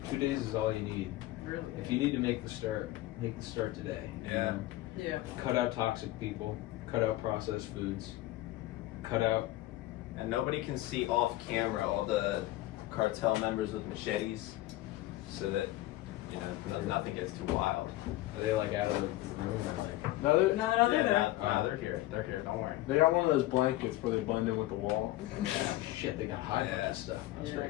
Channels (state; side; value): quieter; right; 16.7 dB